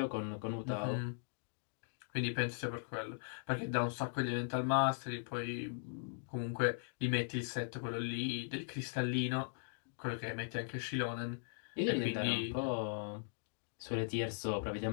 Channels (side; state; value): right; silent; digital silence